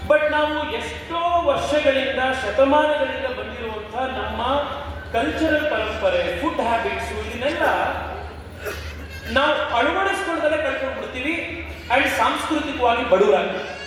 but ನಾವು ಎಷ್ಟೋ ವರ್ಷಗಳಿಂದ, ಶತಮಾನಗಳಿಂದ ಬಂದಿರುವಂತಹ ನಮ್ಮ ಕಲ್ಚರಲ್ ಪರಂಪರೆ, ಫುಡ್ ಹ್ಯಾಬಿಟ್ಸ್, ಇದನ್ನೆಲ್ಲ ನಾವು ಅಳವಡಿಸ್ಕೊಳ್ಳದಲ್ಲೇ ಕಳ್ಕೊಂಡು ಬಿಡ್ತೀವಿ ಅಂಡ್ ಸಾಂಸ್ಕೃತಿಕವಾಗಿ ಬಡವರಾಗ್ತೀವಿ.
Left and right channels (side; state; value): both; identical; correlation 1.00